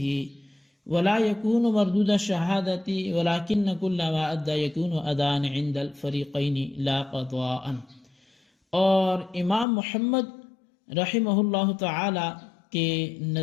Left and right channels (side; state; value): right; drops out; at 9.7 s